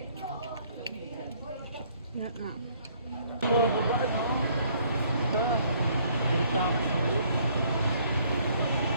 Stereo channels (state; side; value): inverted; both; correlation -0.63